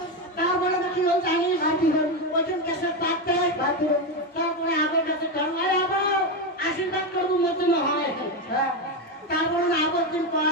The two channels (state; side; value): normal; both; correlation 0.11